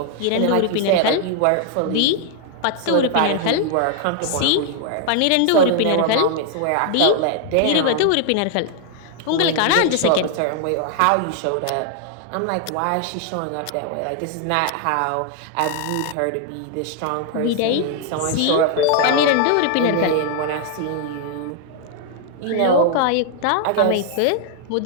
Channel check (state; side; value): different; both; correlation 0.00